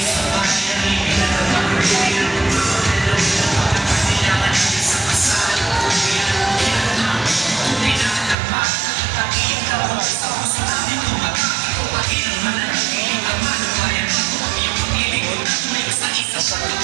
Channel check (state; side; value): drops out; left; at 8.3 s